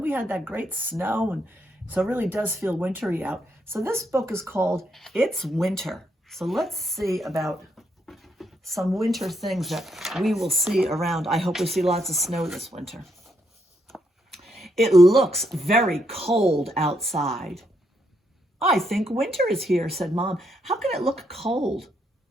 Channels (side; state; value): both; normal; correlation 0.77